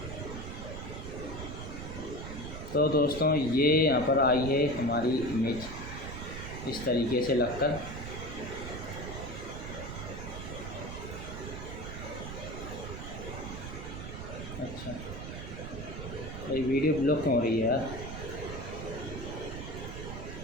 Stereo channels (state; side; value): noise; right; rumble, 8 dB below the sound